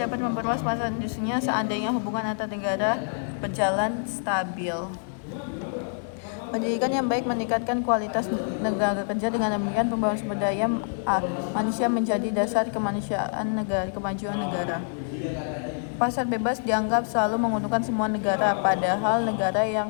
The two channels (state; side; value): silent; right; 61 dB below the other